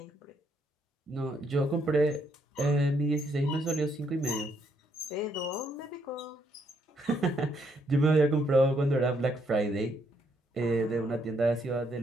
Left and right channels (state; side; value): normal; both; correlation 0.73